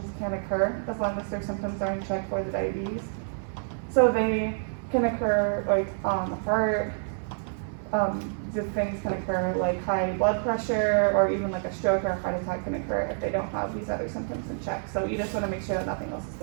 can occur, as long as their symptoms are in check for the diabetes. So they can occur like heart, things can occur like high blood pressure, or even like a stroke or a heart attack can occur if they don't have these other symptoms in check. So you just want to make sure that nothing else is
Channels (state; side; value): silent; left; digital silence